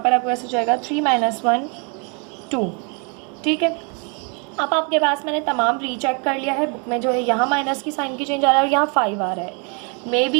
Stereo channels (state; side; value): quieter; left; 35.8 dB